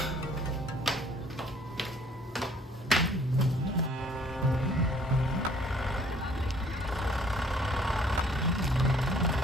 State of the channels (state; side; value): normal; both; correlation 0.58